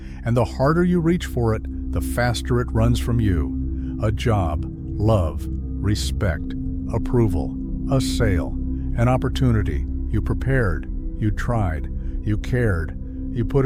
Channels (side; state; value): both; identical; correlation 1.00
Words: and the harder you reach for it, the faster it runs from you. A job, love, respect, approval, a sale, an opportunity. You prepared, you tried, you cared, you put